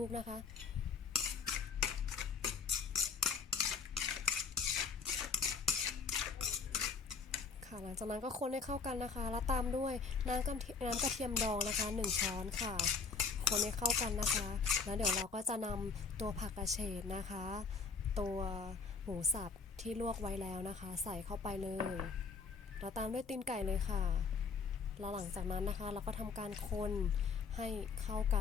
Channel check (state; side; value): quieter; right; 5.1 dB